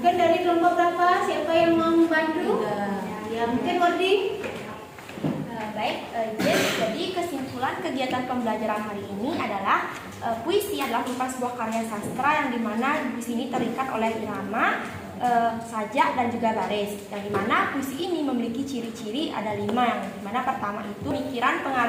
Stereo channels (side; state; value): both; identical; correlation 1.00